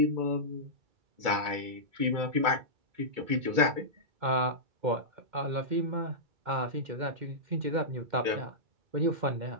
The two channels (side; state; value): left; late; 2.3 ms